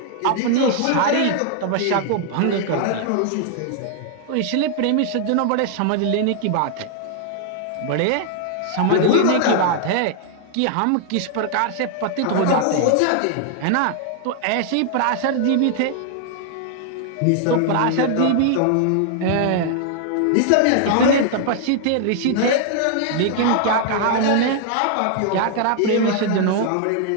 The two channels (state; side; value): different; both; correlation 0.00